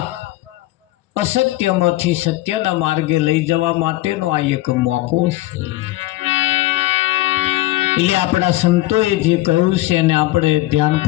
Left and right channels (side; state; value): right; quieter; 17.9 dB